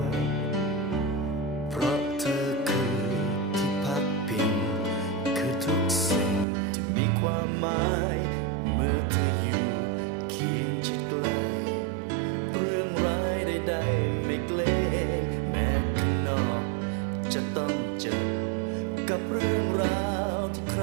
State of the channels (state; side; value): drops out; left; at 6.5 s